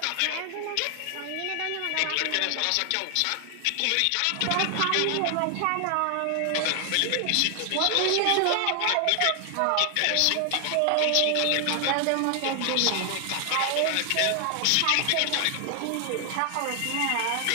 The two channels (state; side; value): different; both; correlation 0.00